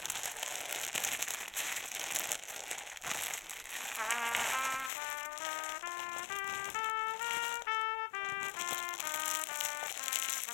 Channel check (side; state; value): right; drops out; at 4.9 s